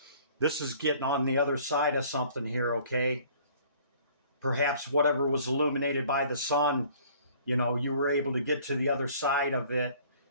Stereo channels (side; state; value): both; inverted; correlation -0.54